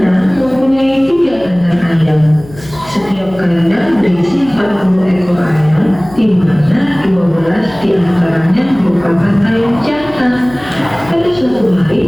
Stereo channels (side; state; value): left; noise; hum, 19 dB below the sound